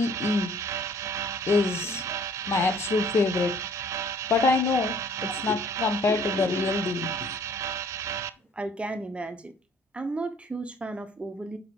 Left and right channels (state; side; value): normal; both; correlation 0.56